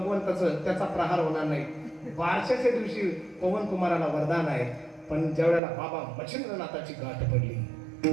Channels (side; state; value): left; drops out; at 5.6 s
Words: त्याचा प्रहार होणार नाही. बारशाच्या दिवशी पवन कुमाराला वरदान आहे. पण ज्यावेळेला बाबा मच्छिंद्रनाथाची गाठ पडली,